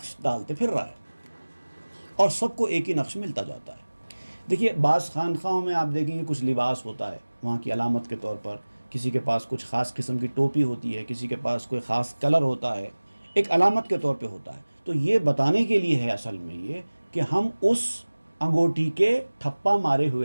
ڈالتے پھر رہا ہے، اور سب کو ایک ہی نقش ملتا جاتا ہے۔ دیکھیے بعض خانقاہوں میں آپ دیکھیں گے کچھ لباس ہوتا ہے وہاں کی علامت کے طور پر، کسی کے پاس کچھ خاص قسم کی ٹوپی ہوتی ہے، کسی کے پاس کوئی خاص کلر ہوتا ہے، ایک علامت کے طور پہ ہوتا ہے۔ تو یہ بتانے کے لیے ہے اصل میں یہ کہ ہم اس انگوٹھی کے ٹھپا مارے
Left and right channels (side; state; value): both; inverted; correlation -1.00